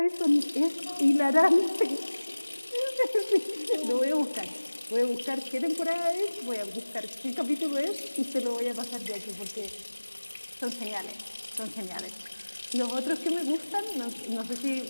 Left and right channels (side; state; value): both; inverted; correlation -1.00